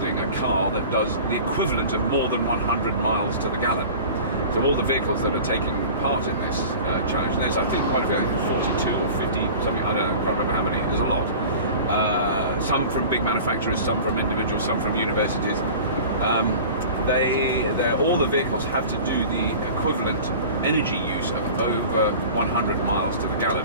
a car that does the equivalent of more than 100 miles to the gallon. So all the vehicles that are taking part in this challenge, and there's I think quite a few, 42 or 50, something, I don't know, I can't remember how many, there's a lot. Some from big manufacturers, some from individuals, some from universities. All the vehicles have to do the equivalent energy use of over 100 miles to the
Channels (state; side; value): inverted; both; correlation -0.39